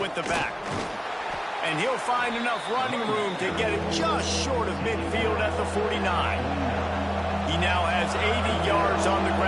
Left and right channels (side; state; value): both; identical; correlation 1.00